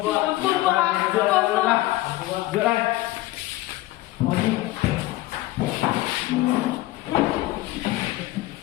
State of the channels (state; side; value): quieter; right; 17.4 dB